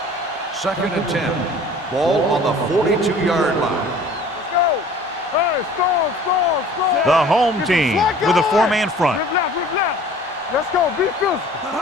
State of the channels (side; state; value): both; normal; correlation 0.48